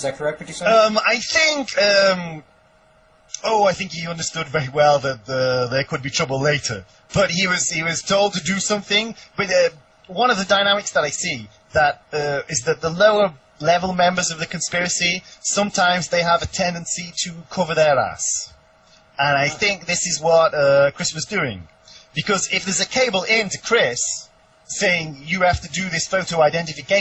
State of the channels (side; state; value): both; identical; correlation 1.00